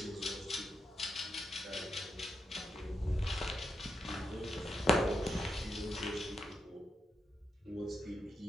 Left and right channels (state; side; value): normal; both; correlation 0.83